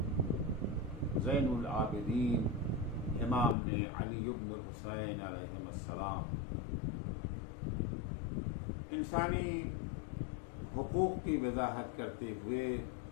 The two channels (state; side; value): drops out; right; at 3.6 s